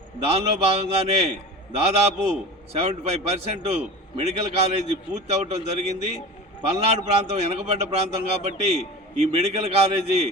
దానిలో భాగంగానే దాదాపు 75% మెడికల్ కాలేజీ పూర్తి అవటం జరిగింది. పల్నాడు ప్రాంతం వెనకబడ్డ ప్రాంతం కాబట్టి ఈ మెడికల్ కాలేజీ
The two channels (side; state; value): both; normal; correlation 0.34